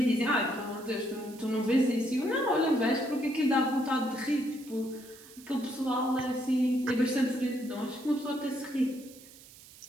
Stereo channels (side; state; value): right; noise; hiss, 20 dB below the sound